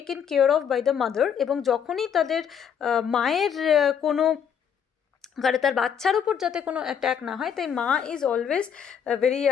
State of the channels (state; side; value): quieter; right; 7.9 dB